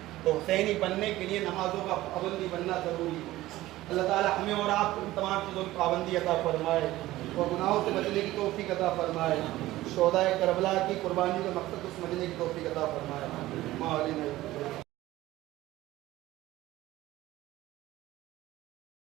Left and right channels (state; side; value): quieter; left; 16.5 dB